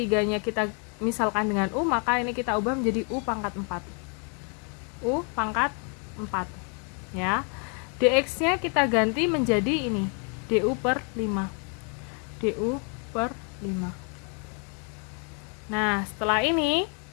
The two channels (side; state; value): right; quieter; 38.7 dB